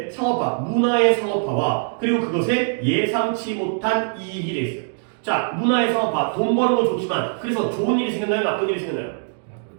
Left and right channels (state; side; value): silent; left; 64 dB below the other